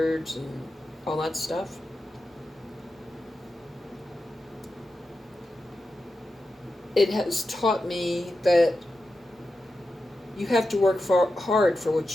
and all that stuff. It has taught me that you have to work hard for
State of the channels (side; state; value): both; normal; correlation 0.90